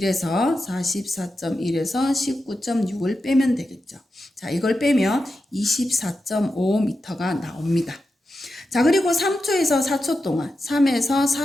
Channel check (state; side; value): normal; both; correlation 0.90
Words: 19.6을 빼면 되겠죠. 자, 이걸 빼면 24.5m가 나옵니다. 자, 그리고 3초에서 4초 동안, 3에서